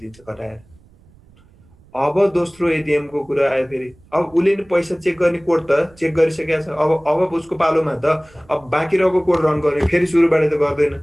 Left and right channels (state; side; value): noise; right; rumble, 28 dB below the sound